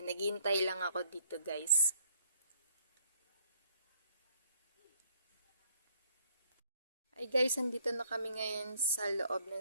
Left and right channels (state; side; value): inverted; both; correlation -0.66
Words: naghihintay lang ako dito guys. Ay guys, andito na kami ngayon sa loob ng